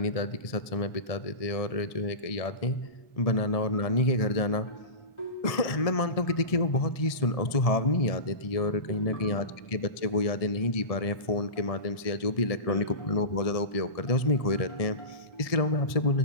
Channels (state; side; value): late; right; 1.6 ms